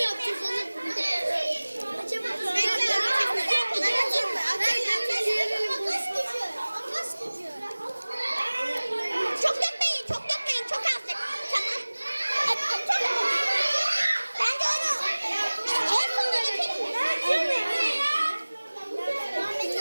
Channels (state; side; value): inverted; both; correlation -1.00